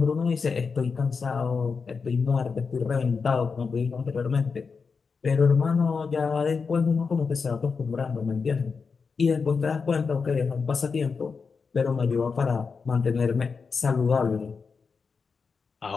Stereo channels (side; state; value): right; quieter; 5.2 dB